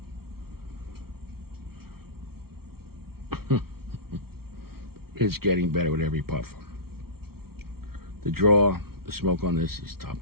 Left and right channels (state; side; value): late; left; 0.94 ms